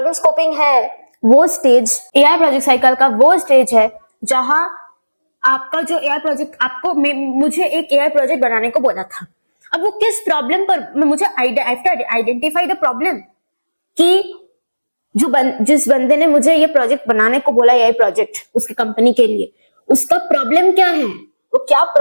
स्कोपिंग है वो स्टेज, एआई प्रोजेक्ट साइकिल का वो स्टेज है जहां आपका जो एआई प्रोजेक्ट, आपको मुझे एक एआई प्रोजेक्ट बनाने को बोला था। अब वो किस प्रॉब्लम पर, मुझे आइडेंटिफाई द प्रॉब्लम कि जिस बंदे ने मुझे ये प्रोजेक्ट बनाने को बोला, एआई प्रोजेक्ट उसकी कंपनी के लिए, उसका प्रॉब्लम क्या है, वो क्या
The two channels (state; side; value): inverted; both; correlation -1.00